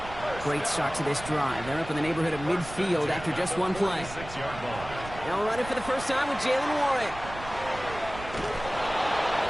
Great start to this drive. They're up in the neighborhood of midfield after just one play. Now running for the first time with Jalen Warren.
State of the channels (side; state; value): right; noise; rumble, 13 dB below the sound